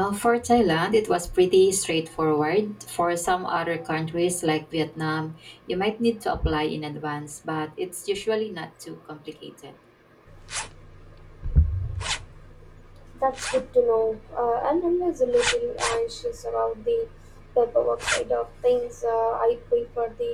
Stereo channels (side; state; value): both; identical; correlation 1.00